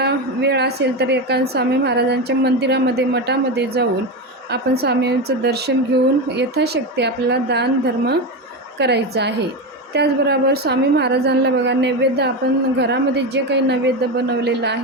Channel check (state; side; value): normal; both; correlation 0.17